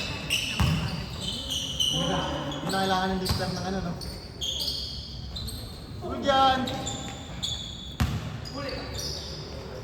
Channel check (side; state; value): both; identical; correlation 1.00